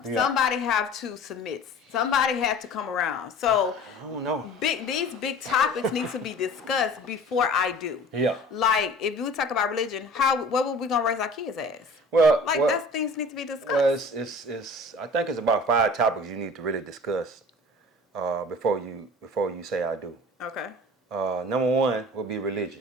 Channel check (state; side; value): normal; both; correlation 0.43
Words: Yeah. Somebody have to submit. Somebody have to come around. So I don't know. These big topics need to be discussed before I do. Yeah. Like if we talk about religion, what were we gonna raise our kids as? Well, that's things need to be discussed. Well, it's I think it's about 5 topics you need to really discuss before you say I do. Okay. Number 1 would be